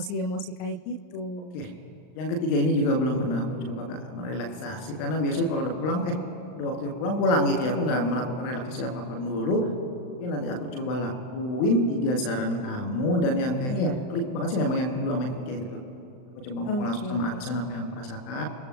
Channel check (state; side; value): late; right; 39 ms